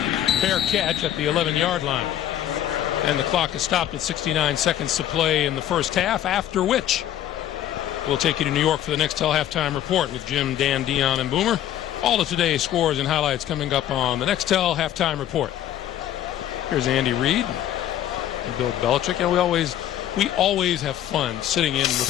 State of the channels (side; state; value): right; quieter; 11.7 dB